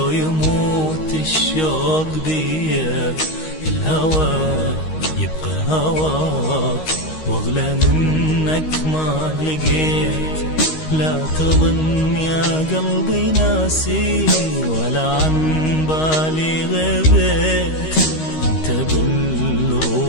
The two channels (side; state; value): right; late; 13 ms